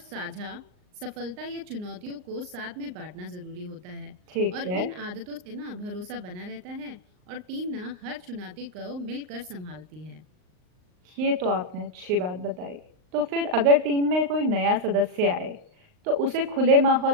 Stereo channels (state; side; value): late; left; 39 ms